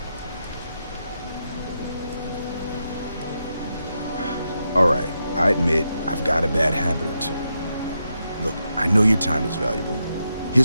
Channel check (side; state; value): both; inverted; correlation -0.84